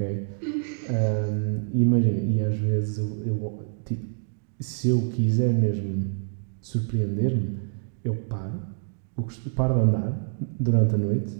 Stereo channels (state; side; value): silent; left; 61 dB below the other